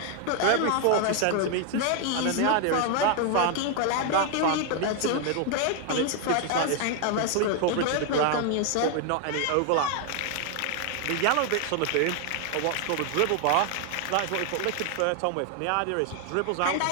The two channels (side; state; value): both; different; correlation 0.00